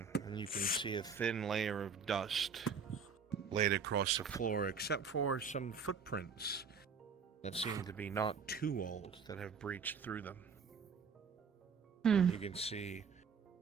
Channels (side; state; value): left; quieter; 5.6 dB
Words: and you can see a thin layer of dust laid across the floor, except for some footprints that seem to be not too old that have breached through them. You can see